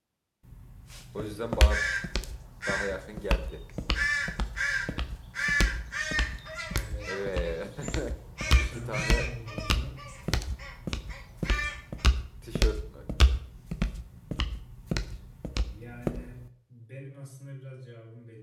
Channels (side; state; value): both; identical; correlation 1.00